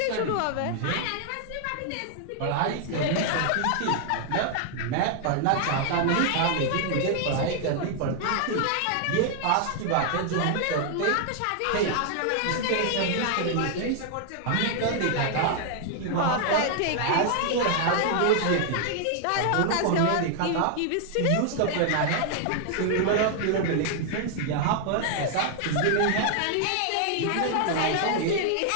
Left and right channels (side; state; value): both; different; correlation 0.00